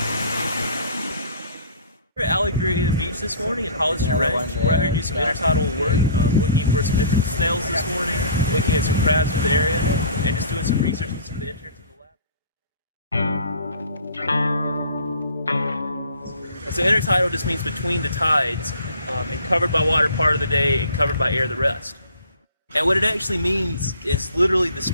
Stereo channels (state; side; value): inverted; both; correlation -0.49